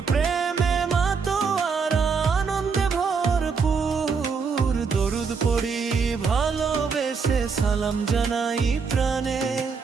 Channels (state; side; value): quieter; left; 5.4 dB